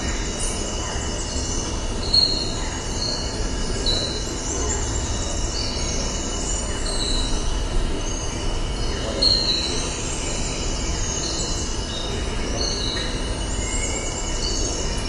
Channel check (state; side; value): identical; both; correlation 1.00